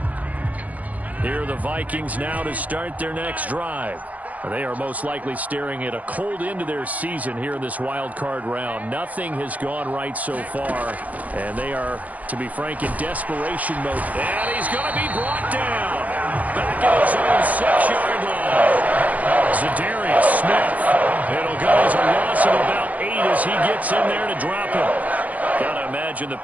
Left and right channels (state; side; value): late; left; 0.074 ms